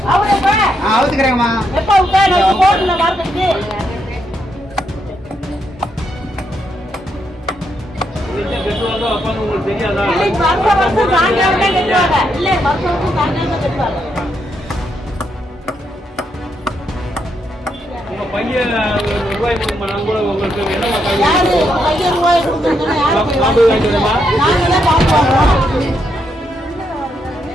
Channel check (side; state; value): both; normal; correlation 0.79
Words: நான் அவுத்துக்கிறேங்கம்மா. எப்ப உட்கார போர்டுல மார்க்கெட்டுக்கு கெட்டுவாங்க அப்பான்னு உங்களுக்கு தெரியாதா? இல்லை வருஷம் சாயங்காலமே கட்டுவாங்க. இல்லை வருஷம் சாயங்காலமே கட்டுவாங்க. உங்க பையன் ரூபாய் கொடுக்குமா? நான் கூட உங்களுக்கு என்ன யாரு பையன் ரூபாய் கொடுக்கணும்னா யாரு காம்பு வாங்கிடுமா? நாங்களே பார்ப்போம்.